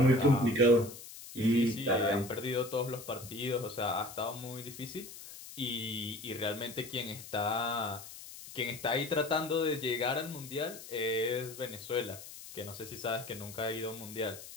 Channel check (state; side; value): noise; left; hiss, 14 dB below the sound